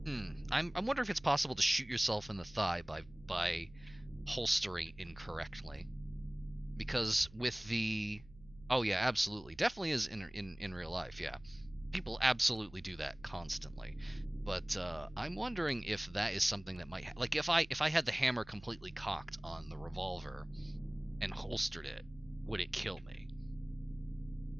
I'm wondering if it's possible to shoot yourself in the thigh by holstering incorrectly. Because with the... Oh yeah, absolutely. Definitely is in real life, yeah. people absolutely do that constantly. But I'm wondering if that is something that might... like, if I had the hammer completely cocked on the revolver and holstered it, would it kill me?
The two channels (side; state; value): right; noise; hum, 22 dB below the sound